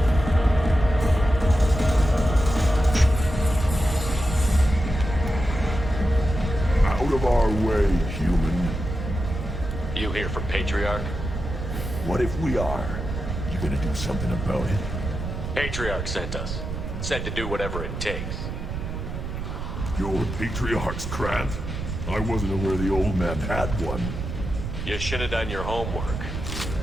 Out of our way, human. You here from Patriarch? What if we are? You gonna do something about it? Patriarch sent us. Said to do whatever it takes. You're Patriarch's Krant? I wasn't aware the old man had one. You should have done your homework.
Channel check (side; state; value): right; noise; rumble, 5 dB below the sound